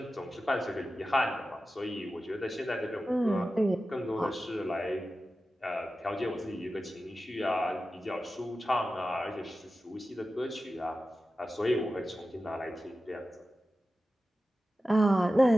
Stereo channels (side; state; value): both; normal; correlation 0.94